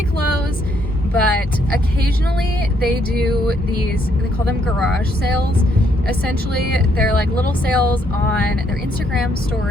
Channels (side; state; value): both; normal; correlation 0.72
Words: close. But occasionally they do these, they call them garage sales. Essentially, they're like little sales on their Instagram